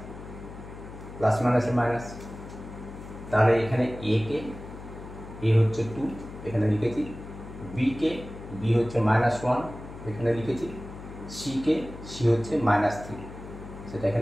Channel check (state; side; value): noise; left; hum, 13 dB below the sound